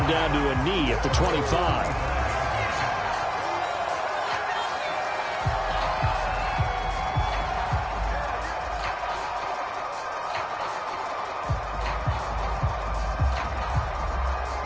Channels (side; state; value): both; identical; correlation 1.00